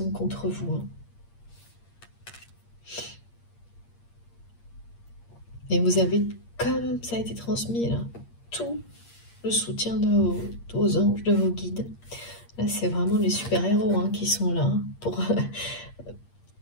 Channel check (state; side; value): late; right; 8.6 ms